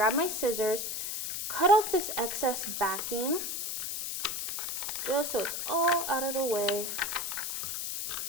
my scissors, cut off this excess backing, just so it's all out of the way.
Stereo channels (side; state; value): left; noise; hiss, 3 dB below the sound